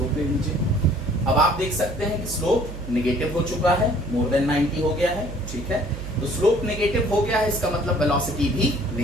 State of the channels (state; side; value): noise; right; hum, 10 dB below the sound